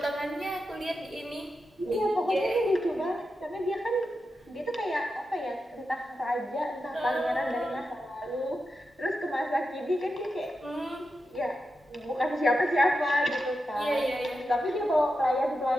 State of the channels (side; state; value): both; normal; correlation 0.89